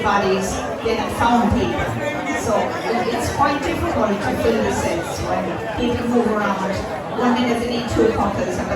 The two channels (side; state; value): both; identical; correlation 1.00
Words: bodies, they had found people. So it's quite difficult to fill the sets when people move around. 1 minute they need 2 couples, and by